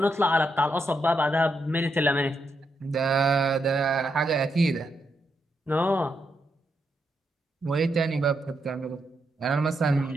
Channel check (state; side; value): normal; both; correlation 0.81